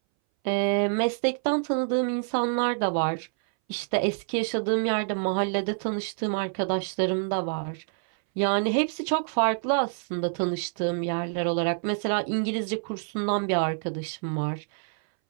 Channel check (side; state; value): left; silent; 60 dB below the other